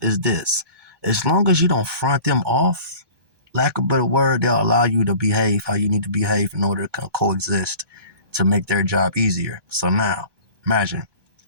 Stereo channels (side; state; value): left; late; 1.2 ms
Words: is this. As long as you don't front them off, lack of a better word, they'll allow you to behave how you need to behave in order to coexist to make their job easier. So now, imagine,